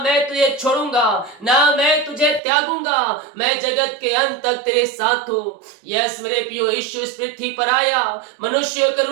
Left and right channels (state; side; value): drops out; left; at 2.4 s